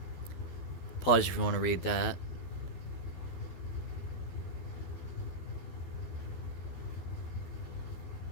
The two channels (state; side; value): late; right; 12 ms